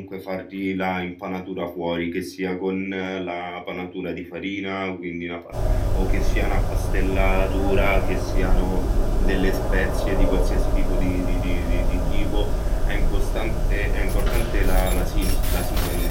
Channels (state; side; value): identical; both; correlation 1.00